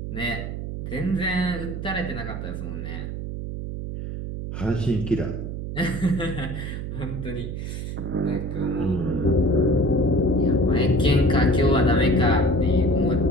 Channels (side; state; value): right; noise; hum, 6 dB below the sound